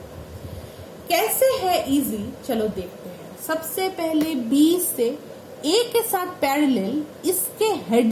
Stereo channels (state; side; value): identical; both; correlation 1.00